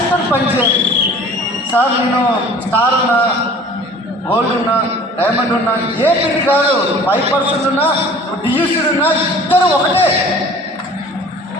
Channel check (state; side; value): normal; both; correlation 0.47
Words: పనిచేయాలి సార్. నేను స్టార్ ఉన్నా, గోల్డ్ ఉన్నా, డైమండ్ ఉన్నా, ఏ పిల్లి కాదు, 5% ఉన్నా, డియూసీడ్ ఉన్నా, ఇద్దరు ఒకటే.